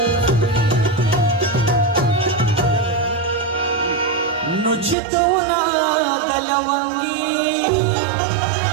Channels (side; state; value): left; drops out; at 5.0 s